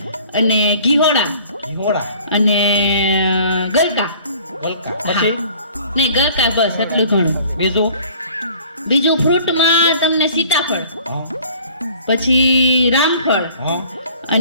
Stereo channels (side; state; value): both; inverted; correlation -0.50